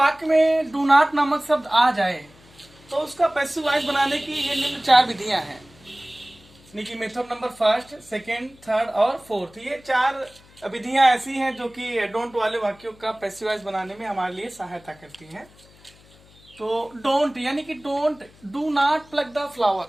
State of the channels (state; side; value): noise; left; hum, 26 dB below the sound